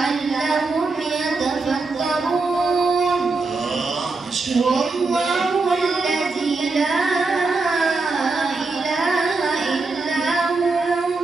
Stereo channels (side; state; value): left; quieter; 3.8 dB